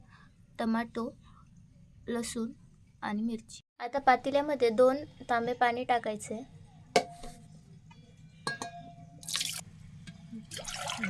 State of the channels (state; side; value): identical; both; correlation 1.00